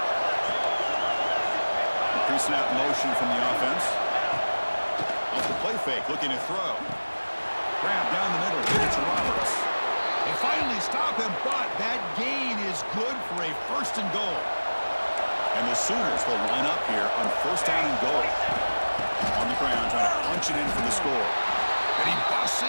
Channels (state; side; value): inverted; both; correlation -1.00